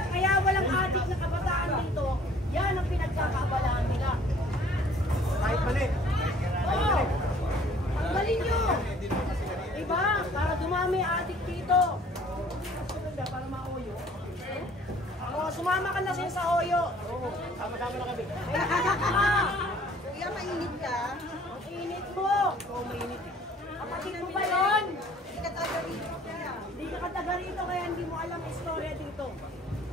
kaya walang adik na kabataan dito. kayo sa Oyo. Oo, sama-sama na kami. Kuya, mainit ka? Ang init mo. Oo, mainit eh. Kapatid mo ba yun? Hindi ka taga rito kaya. Hindi ka taga rito kaya hindi mo alam ang istorya dito.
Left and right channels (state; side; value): normal; both; correlation 0.55